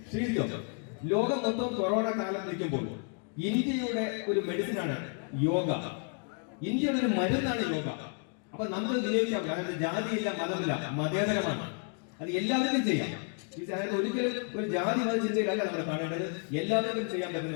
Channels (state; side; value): quieter; right; 39.9 dB